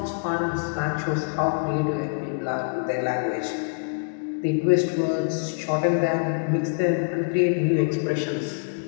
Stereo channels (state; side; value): silent; right; digital silence